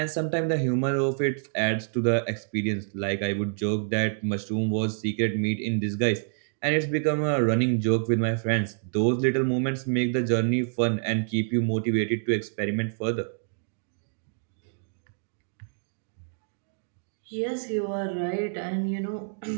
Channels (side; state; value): left; silent; digital silence